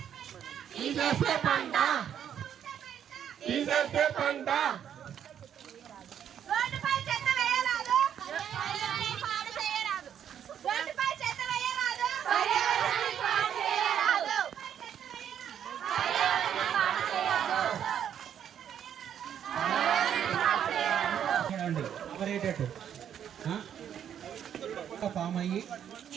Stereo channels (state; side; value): quieter; left; 9.3 dB